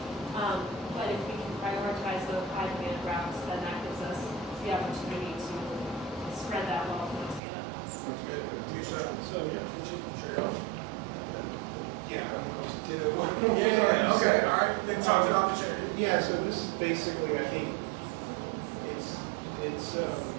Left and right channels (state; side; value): drops out; left; at 7.4 s